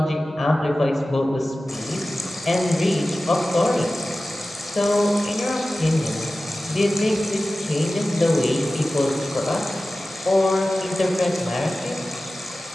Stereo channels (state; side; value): normal; both; correlation 0.96